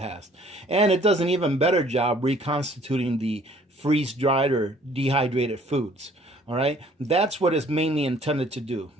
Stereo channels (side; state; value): both; normal; correlation 0.57